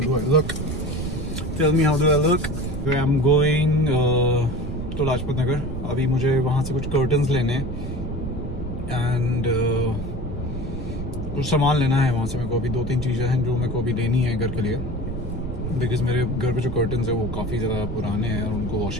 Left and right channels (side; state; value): right; noise; rumble, 6 dB below the sound